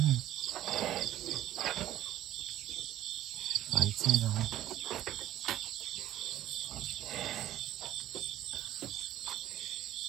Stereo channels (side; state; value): left; quieter; 13.1 dB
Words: Phải chứ rồi.